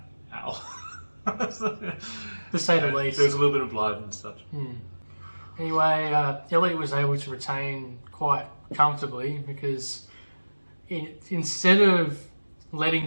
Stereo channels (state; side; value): inverted; both; correlation -1.00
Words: "Ow." To say the least. There was a little bit of blood and such. Anyway, Elliot was able to retain quite comfortably because instead of letting